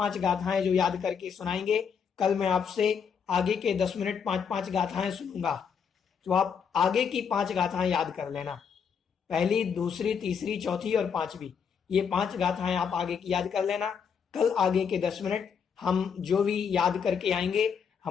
गाथाएं जो याद करके सुनाएंगे, कल मैं आपसे आगे के 10 मिनट 5-5 गाथाएं सुनूंगा, तो आप आगे की 5 गाथाएं याद कर लेना। पहली, दूसरी, तीसरी, चौथी और 5वीं, ये 5 गाथाएं आप आगे की याद कर लेना। कल आगे के 10 मिनट हम जो भी याद करके आएंगे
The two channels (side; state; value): right; quieter; 6.8 dB